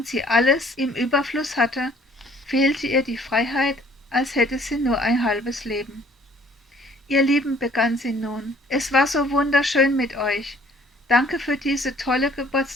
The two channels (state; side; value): normal; both; correlation 0.57